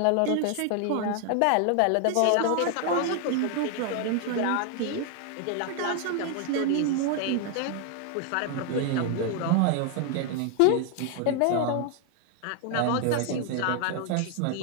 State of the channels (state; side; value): different; both; correlation 0.00